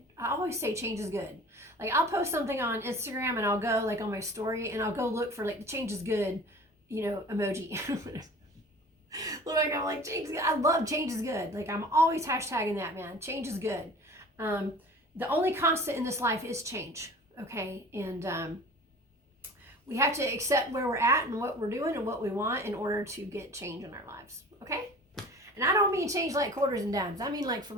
I always say change is good. Like, I'll post something on Instagram and I'll go on my story and I'll go look for the change is good, emoji. Look, I'm like, change is good. I love change is good. Like, I'm always hashtagging that, man. Change is good. The only constant in this life is change, okay? And we have to accept where we're at and what we're doing and what we want in order to get change in our lives, okay? And I don't mean change like quarters and dimes. I mean like for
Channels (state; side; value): normal; both; correlation 0.43